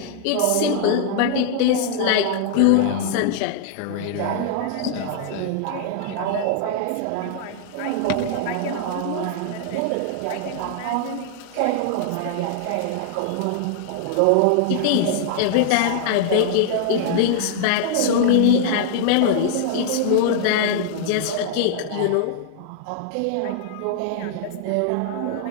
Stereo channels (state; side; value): different; both; correlation -0.01